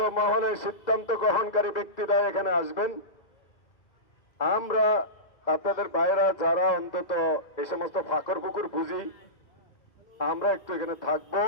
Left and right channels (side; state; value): right; late; 2.0 ms